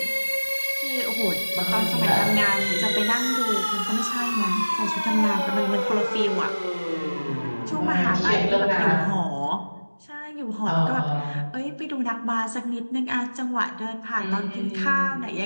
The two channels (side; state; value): both; inverted; correlation -1.00